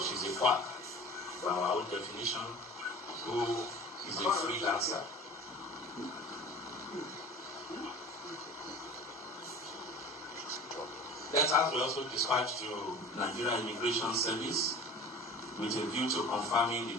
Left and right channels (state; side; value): normal; both; correlation 0.40